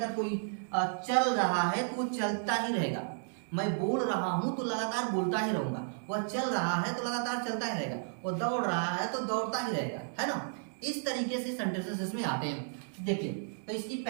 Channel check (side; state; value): left; silent; digital silence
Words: कोई चल रहा है तो वो चलता ही रहेगा। मैं बोल रहा हूं तो लगातार बोलता ही रहूंगा, वह चल रहा है तो लगातार चलता ही रहेगा, वो दौड़ रहा है तो दौड़ता ही रहेगा, है ना। इस तरीके से सेंटेंसेस इसमें आते हैं। देखिए तो इसकी